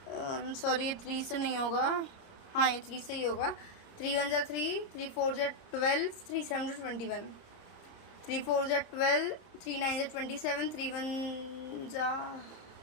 सॉरी ये 3 से नहीं होगा, हाँ ये 3 से ही होगा। 3 1 जा 3, 3 4 जा 12, 3 7 जा 21, 3 4 जा 12, 3 9 जा 27, 3 1 जा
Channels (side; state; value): right; late; 30 ms